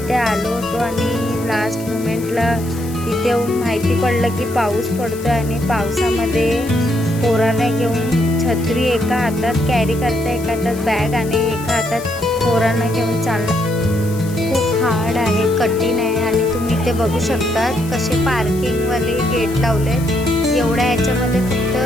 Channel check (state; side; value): noise; left; hiss, 16 dB below the sound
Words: आलो होतो आणि लास्ट मोमेंटला इथे येऊन माहिती पडलं की पाऊस पडतो आणि पावसामध्ये पोरांना घेऊन छत्री एका हातात कॅरी करता, एका हातात बॅग आणि एका हातात पोरांना घेऊन चालणं खूप हार्ड आहे, कठीण आहे. आणि तुम्ही इथे बघू शकता कसे पार्किंगवाले गेट लावलेत. एवढ्या याच्यामध्ये